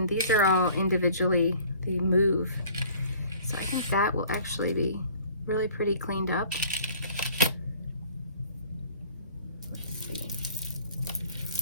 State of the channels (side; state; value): both; inverted; correlation -0.51